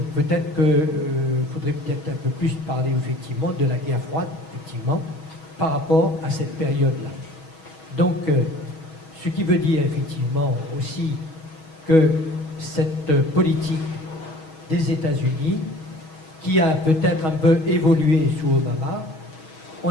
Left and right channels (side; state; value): right; late; 6.3 ms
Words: peut-être qu'il faudrait peut-être un peu plus parler, effectivement, de la guerre froide, effectivement, par rapport à cette période-là. Donc, ce qui veut dire, effectivement, aussi que cette politique des États-Unis, qui a peut-être un peu évolué sous Obama, on